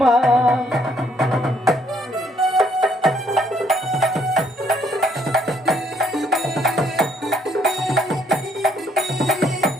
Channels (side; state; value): both; normal; correlation 0.67